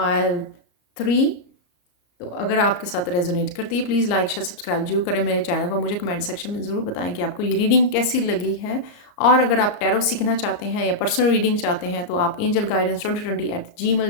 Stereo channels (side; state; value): right; late; 34 ms